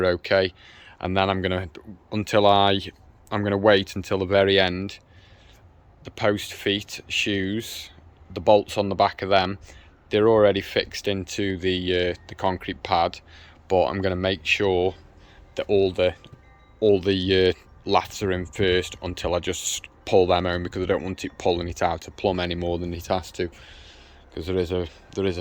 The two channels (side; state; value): both; identical; correlation 1.00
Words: okay. And then I'm gonna wait until the very end. The post feet shoes, the bolts on the back of them, they're already fixed into the concrete pad, but I'm going to make sure that all the laths are in first until I just pull them home, because I don't want it pulling it out of plumb any more than it has to, because there is